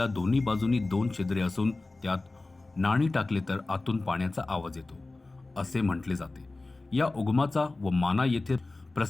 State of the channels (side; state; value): right; quieter; 3.2 dB